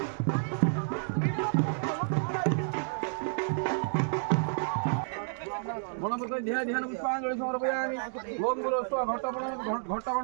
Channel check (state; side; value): silent; left; digital silence